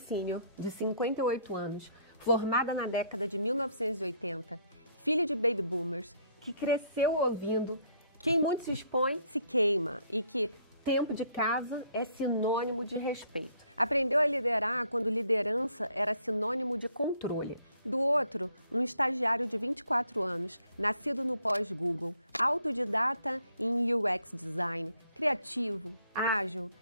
de 58 anos, formada na década de 1980, filha de baby boomers, que cresceu ouvindo "quem muito se expõe, se queima" e que tempo de casa é sinônimo de respeito. Aprendeu a liderar quando liderança era sinônimo de controle. Do outro, um estagiário de 24 anos, nascido no pós-Google, autodidata em UX design, criativo, ágil,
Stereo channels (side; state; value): both; inverted; correlation -0.65